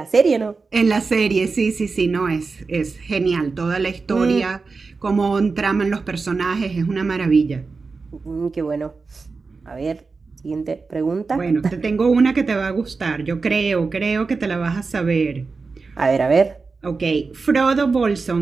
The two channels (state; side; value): quieter; left; 4.4 dB